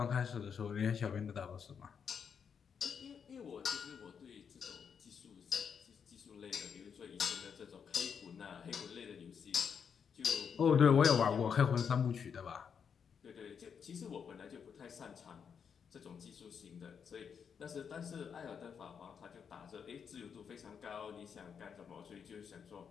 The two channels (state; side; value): quieter; right; 7.0 dB